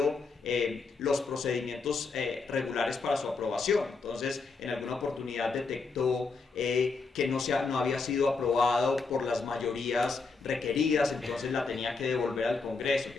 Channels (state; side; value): quieter; right; 4.3 dB